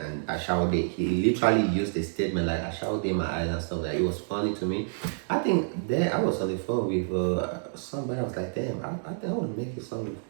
and I shall date. He literally used the statement like I shall date my eyes and stuff like that. It was funny to me. I think then I was on the phone with somebody. I was like, damn, I think I want to make a song with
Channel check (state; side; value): silent; left; digital silence